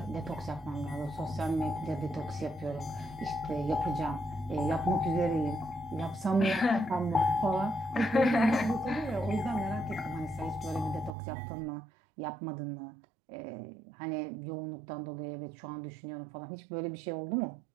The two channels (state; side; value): drops out; left; at 11.2 s